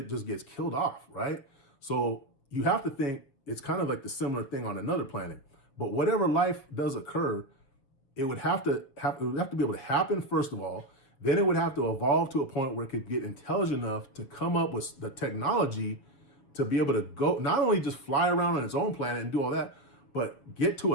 just gets killed off, right? So you have to think it's kind of like the similar thing on another planet. But whatever life does occur, it would have to be able to happen, first of all. Then it would have to evolve to a point where it could get intelligent enough to come up with the technology to be able to go, not only just fly around on its own planet and do all that, but get to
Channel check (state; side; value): late; right; 7.1 ms